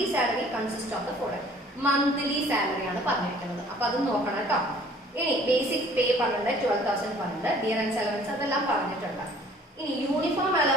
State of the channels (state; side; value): normal; both; correlation 0.54